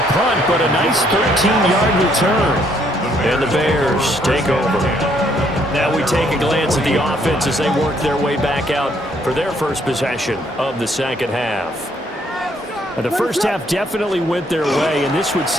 punt, but a nice 13-yard return. And the Bears take over. Now we take a glance at the offense as they work their way back out for their first possession of the second half. The first half definitely went their way, and this would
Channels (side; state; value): both; normal; correlation 0.68